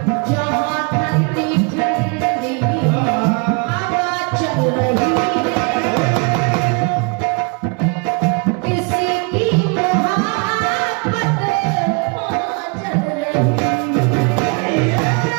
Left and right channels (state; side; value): quieter; left; 33.0 dB